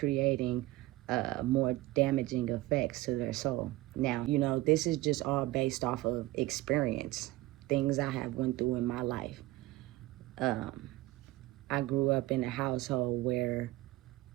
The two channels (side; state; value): left; quieter; 17.8 dB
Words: more damaging effects to their soul. Now, this is just all based off of experience, things I have went through in my life. I grew up in a household where